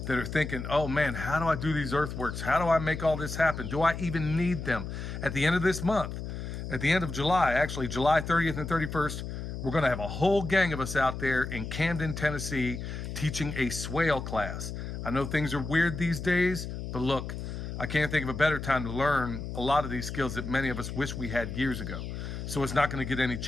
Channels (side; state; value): left; noise; hum, 6 dB below the sound